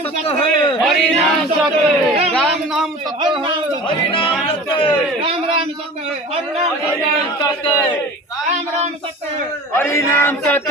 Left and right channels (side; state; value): both; normal; correlation 0.38